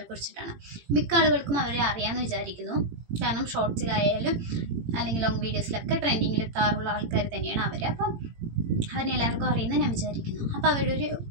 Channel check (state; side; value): late; left; 18 ms